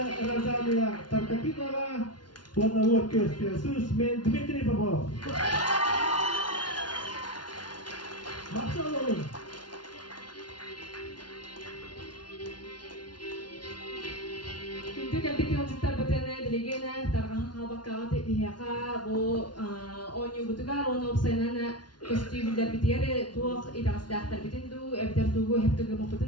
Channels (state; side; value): late; right; 0.70 ms